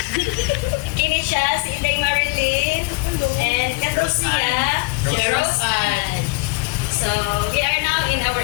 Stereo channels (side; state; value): right; quieter; 25.7 dB